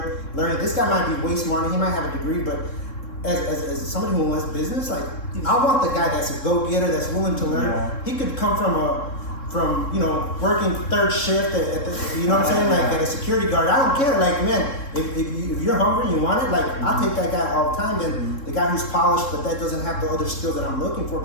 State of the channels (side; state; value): right; late; 3.7 ms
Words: learning. This guy might be way smarter. He might have a degree, but as somebody who wants business, like I want the guy that's a go-getter, that's willing to learn. He could come from working third shift at the, you know what I'm saying, like at a security guard. I don't care. Like, man, if you're hungry and you want it, like I'll take that guy all the time. And the guy who's polished, but that doesn't have the other skill that I'm looking for,